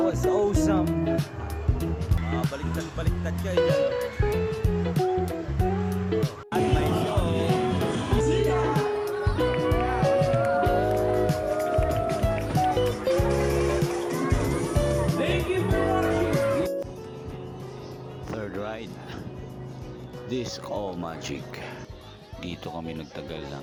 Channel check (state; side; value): identical; both; correlation 1.00